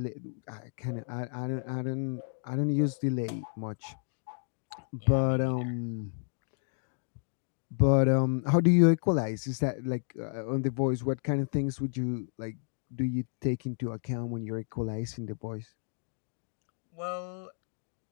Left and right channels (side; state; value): right; silent; digital silence